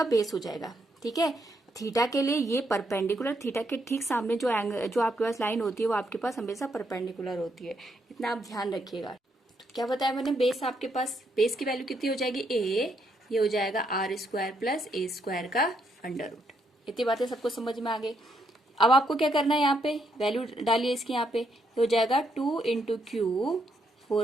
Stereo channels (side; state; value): both; normal; correlation 0.76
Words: बेस हो जाएगा। ठीक है, थीटा के लिए ये परपेंडिकुलर, थीटा के ठीक सामने जो एंगल जो आपके पास लाइन होती है वो आपके पास हमेशा परपेंडिकुलर होती है, इतना आप ध्यान रखिएगा। तो क्या बताया मैंने, बेस आपके पास, बेस की वैल्यू कितनी हो जाएगी ए, ये हो जाएगा R square plus A square का अंडर रूट। इतनी बातें सबको समझ में आ गई। अब आपको क्या करना है, यहाँ पे वैल्यू डालिए इसकी, यहाँ पे हो जाएगा 2 into Q